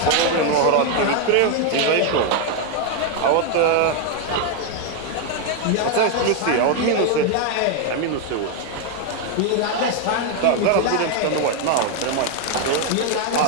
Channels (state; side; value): different; both; correlation 0.01